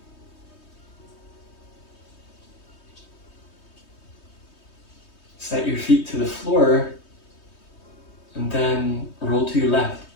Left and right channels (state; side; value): late; right; 3.2 ms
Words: Set your feet to the floor and then roll to your left.